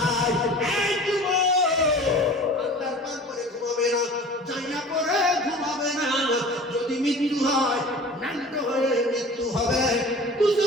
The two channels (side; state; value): both; normal; correlation 0.41